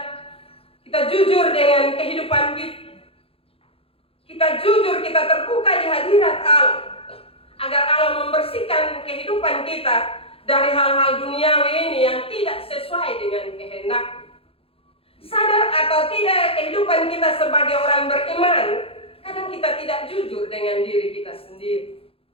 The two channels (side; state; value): right; late; 0.27 ms